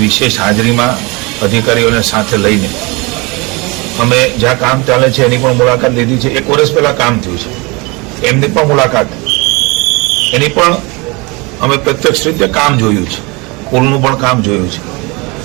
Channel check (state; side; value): quieter; left; 27.1 dB